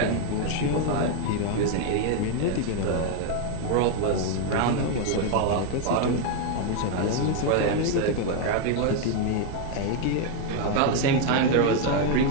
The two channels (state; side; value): different; both; correlation 0.01